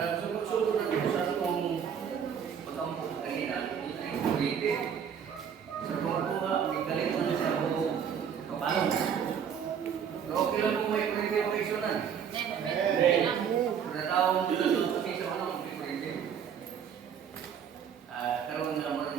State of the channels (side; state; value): left; quieter; 7.9 dB